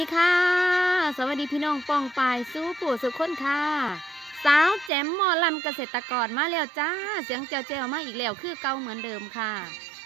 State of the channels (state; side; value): drops out; left; at 4.9 s